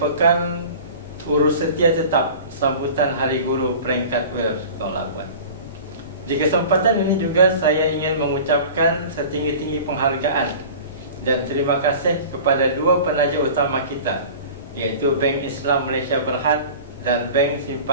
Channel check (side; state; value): both; inverted; correlation -0.40